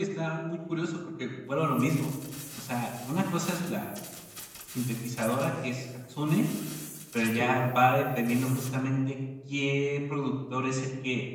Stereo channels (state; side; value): identical; both; correlation 1.00